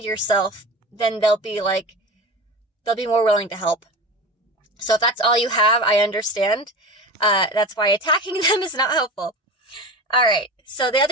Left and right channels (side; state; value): both; normal; correlation 0.30